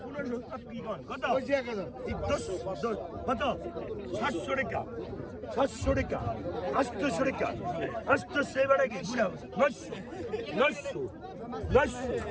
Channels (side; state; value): both; identical; correlation 1.00